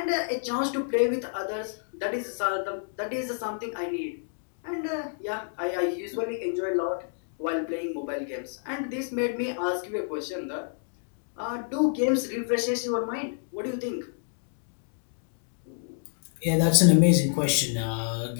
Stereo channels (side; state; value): right; silent; digital silence